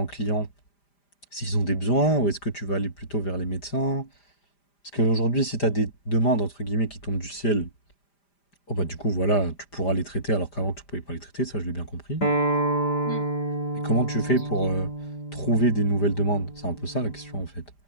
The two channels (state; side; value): late; right; 5.0 ms